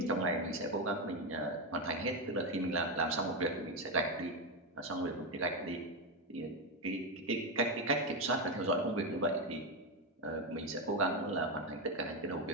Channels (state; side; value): normal; both; correlation 0.09